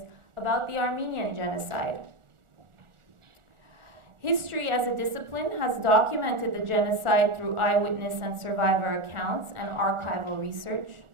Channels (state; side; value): late; left; 1.4 ms